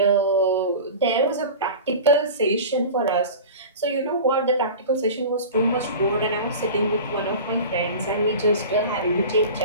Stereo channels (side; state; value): both; inverted; correlation -0.34